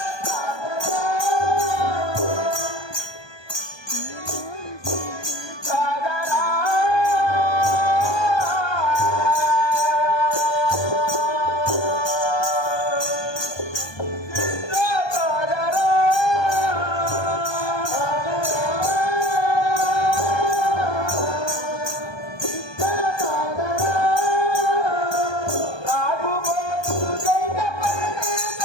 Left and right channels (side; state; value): right; late; 1.2 ms